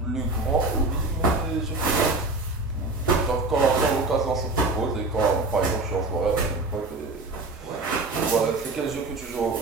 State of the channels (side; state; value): left; quieter; 3.2 dB